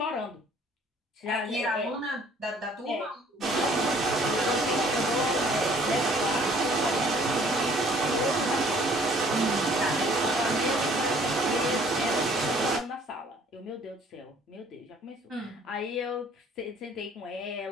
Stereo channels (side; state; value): both; normal; correlation 0.58